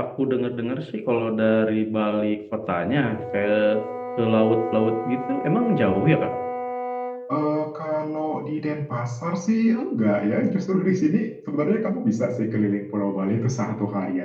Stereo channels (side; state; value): both; identical; correlation 1.00